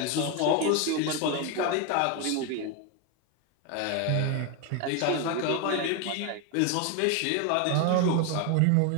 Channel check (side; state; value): both; different; correlation 0.01